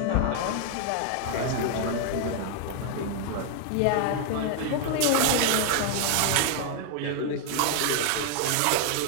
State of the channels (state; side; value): different; both; correlation 0.00